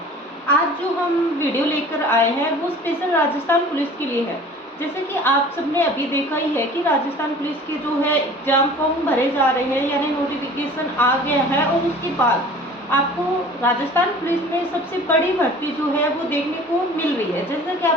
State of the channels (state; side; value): normal; both; correlation 0.44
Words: आज जो हम वीडियो लेकर आए हैं वो स्पेशल राजस्थान पुलिस के लिए है। जैसे कि आप सबने अभी देखा ही है कि राजस्थान पुलिस के जो है एग्जाम फॉर्म भरे जा रहे हैं, यानी नोटिफिकेशन आ गया है। और उसके बाद आपको राजस्थान पुलिस में सबसे बड़ी भर्ती जो है वो देखने को मिल रही है। जैसा कि